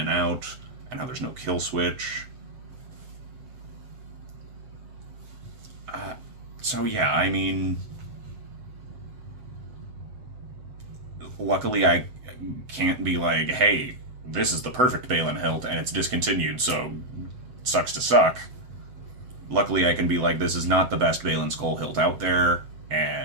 out, and how there's no kill switch. So yeah, I mean, luckily I can't be like, hey, this is the perfect Baylan hilt and it's discontinued, so sucks to suck. Luckily I can be like, this is not the best Baylan Skoll hilt out there,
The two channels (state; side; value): late; left; 7.8 ms